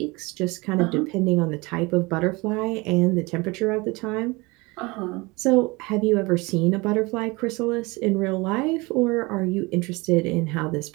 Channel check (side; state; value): left; quieter; 24.6 dB